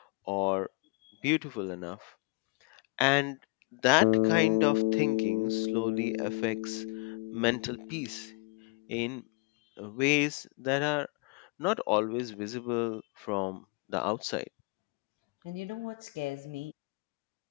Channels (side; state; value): right; quieter; 27.7 dB